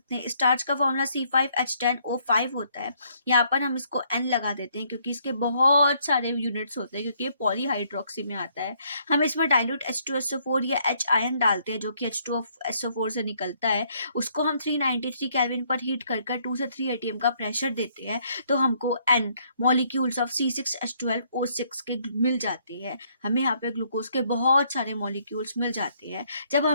हैं, स्टार्च का फॉर्मूला C5H10O5 होता है। यहाँ पर हम इसको N लगा देते हैं क्योंकि इसके बहुत सारे यूनिट्स होते हैं, क्योंकि ये पॉलीहाइड्रोक्सी में आता है। हम इसमें डाइल्यूट H2SO4 या H आयन डालते हैं, जो कि H2SO4 से निकलता है, उसको हम 393 केल्विन पर हीट कर 2 से 3 atm का प्रेशर देते हैं, तो हमको N मॉलिक्यूल्स ऑफ C6H12O6 के मिल जाते हैं। हमें यहाँ पे ग्लूकोज के बहुत सारे मॉलिक्यूल्स मिल जाते हैं। जब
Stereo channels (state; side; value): inverted; both; correlation -0.68